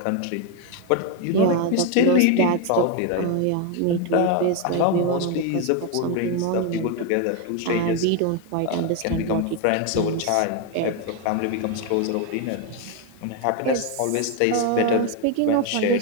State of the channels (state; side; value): different; both; correlation 0.01